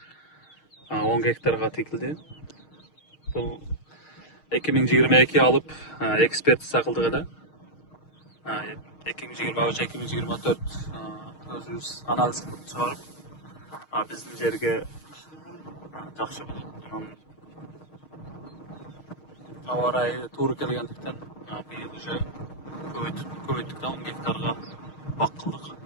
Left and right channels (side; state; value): right; late; 6.5 ms